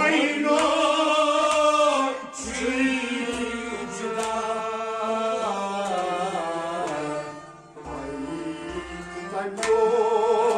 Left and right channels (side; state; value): both; identical; correlation 1.00